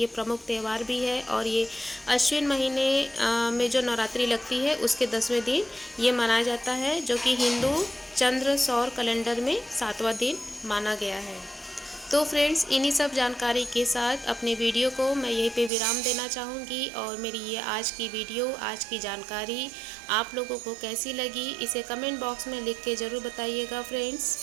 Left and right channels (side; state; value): left; drops out; at 15.7 s